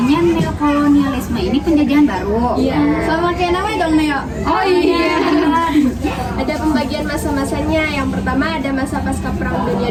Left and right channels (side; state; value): both; identical; correlation 1.00